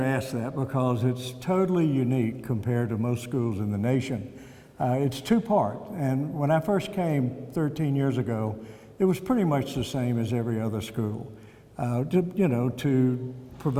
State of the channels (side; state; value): both; identical; correlation 1.00